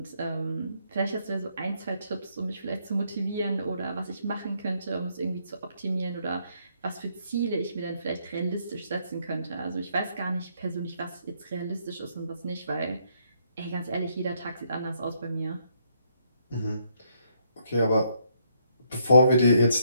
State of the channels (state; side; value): inverted; both; correlation -0.72